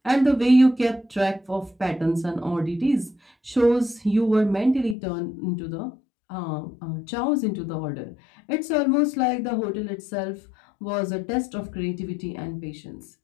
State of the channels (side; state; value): right; drops out; at 5.0 s